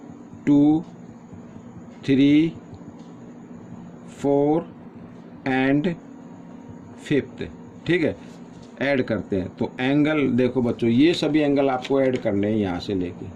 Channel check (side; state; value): both; identical; correlation 1.00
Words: 2 3 4 एंड 5th, ठीक है, ऐड करते हैं। तो एंगल देखो बच्चों, ये सभी एंगल आपको ऐड करने हैं यहाँ से लेके,